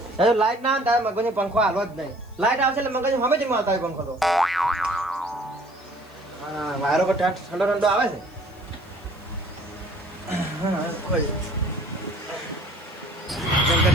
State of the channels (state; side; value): noise; left; hiss, 29 dB below the sound